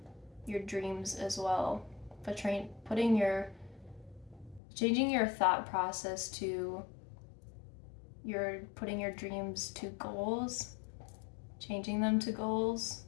dreams as well, but changing your thought process to putting your dreams to goals, changing them to goals,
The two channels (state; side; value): drops out; right; at 4.6 s